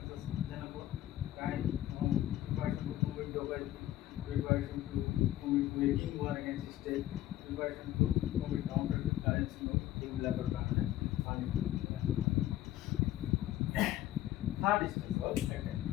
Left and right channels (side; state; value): right; quieter; 13.9 dB